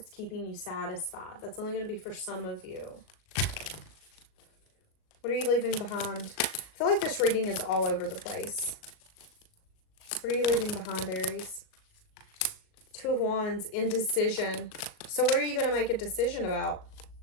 keeping you satisfied. That's only going to be for some of you. What are you leaving behind? I feel like this reading is all over the place. What are you leaving behind, Aries? Two of Wands, indecision. So what are you going to make a decision about?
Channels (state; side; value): late; right; 38 ms